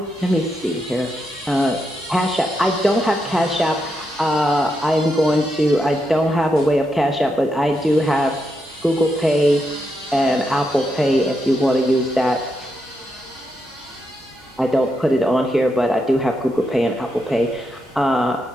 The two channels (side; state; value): both; normal; correlation 0.83